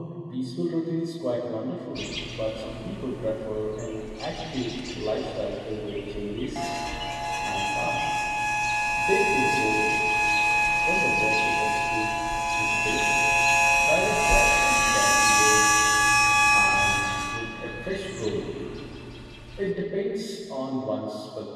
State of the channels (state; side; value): identical; both; correlation 1.00